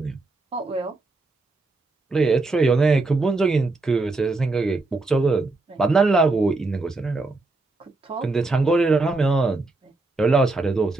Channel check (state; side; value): quieter; left; 3.3 dB